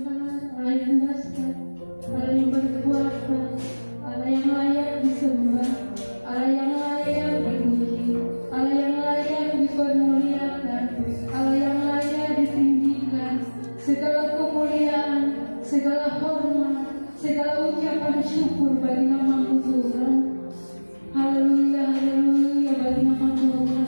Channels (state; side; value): inverted; both; correlation -1.00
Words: Allah yang dahsyat, Allah yang berkuasa, Allah yang layak disembah, Allah yang layak dipuji, Allah yang layak dipermuliakan, Allah yang layak ditinggikan. Segala kemuliaan, segala hormat, segala ucapan syukur bagi nama Tuhan. Haleluya, haleluya bagi nama Tuhan.